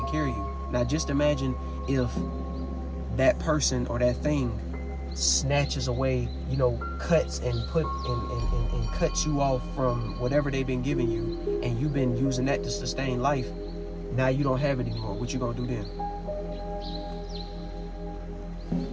care of you. Now just imagine if that person or that thing snatches away, you know, cuts and cuts you off from whatever they've been giving you, and you've been using that to sustain life. Now you don't have it anymore. What you gonna do then?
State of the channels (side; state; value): both; identical; correlation 1.00